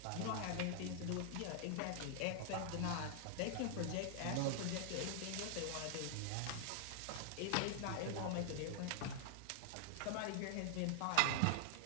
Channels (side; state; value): both; different; correlation -0.01